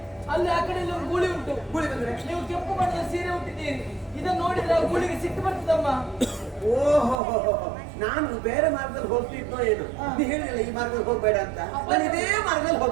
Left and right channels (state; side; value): drops out; left; at 7.2 s